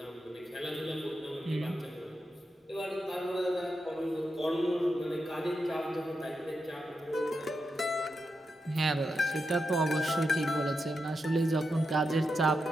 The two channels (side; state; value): both; normal; correlation 0.87